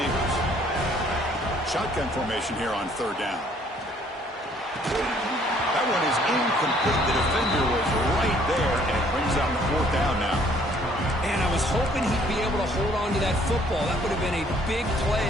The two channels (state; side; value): normal; both; correlation 0.61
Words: Shotgun formation here on third down. That one is incomplete. The defender was right there, and it brings out the fourth down now. And I was hoping he'd be able to hold on to that football. That would have been a big play